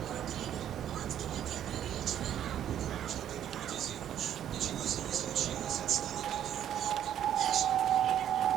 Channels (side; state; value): left; quieter; 10.5 dB